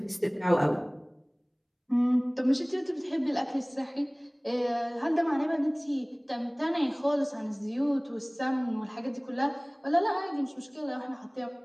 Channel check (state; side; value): identical; both; correlation 1.00